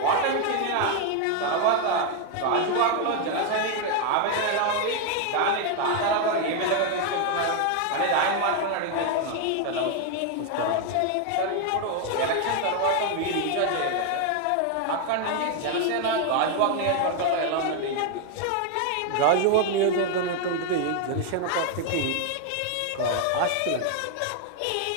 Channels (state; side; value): different; both; correlation 0.01